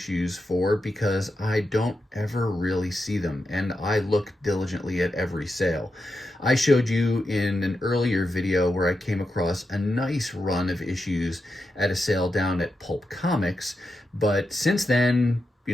for, because I don't ever really see them, and I look diligently at every sale. I showed you in an earlier video where I came across a nice run of issues at a sale down at Pulp Comics, but since then, you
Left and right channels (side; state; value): both; normal; correlation 0.87